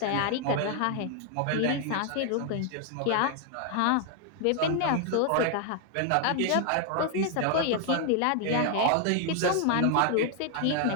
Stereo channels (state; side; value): different; both; correlation 0.00